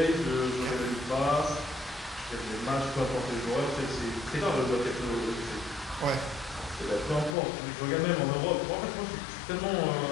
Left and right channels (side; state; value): right; drops out; at 7.4 s